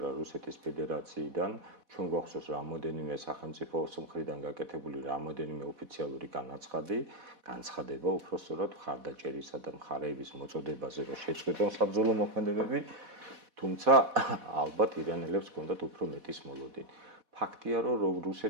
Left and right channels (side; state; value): left; late; 4.1 ms